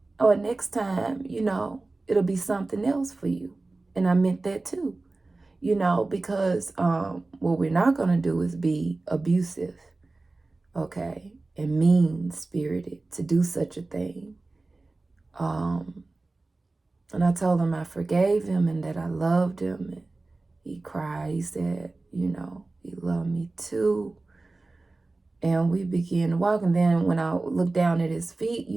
Or next time, you know, it'll be something else for you. And I meant that too, you know, because what we're not going to do is be abusive, okay, and mean-spirited to do such a thing. And I told him I forgave him and that I loved him. And he cried. He said, you know, he loved me too. And we began to walk. And then when I looked down at his feet,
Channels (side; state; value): left; quieter; 3.3 dB